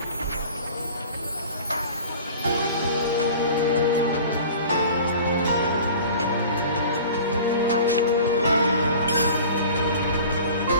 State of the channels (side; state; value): both; inverted; correlation -0.42